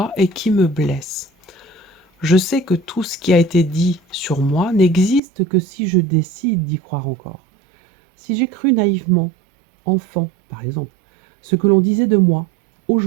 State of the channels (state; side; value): drops out; left; at 5.2 s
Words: et qui me blessent. Je sais que tout ce qui a été dit sur moi n'existe que si je décide d'y croire encore. Si j'ai cru naïvement, enfant par exemple, ce que l'on disait de moi,